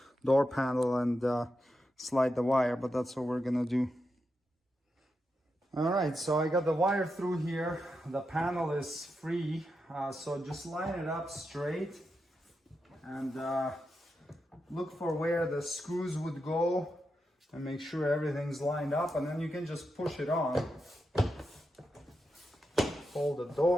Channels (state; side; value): normal; both; correlation 0.87